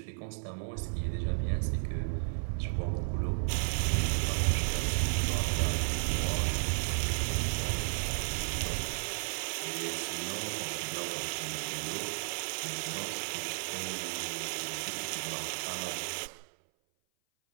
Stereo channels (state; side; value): silent; left; 55 dB below the other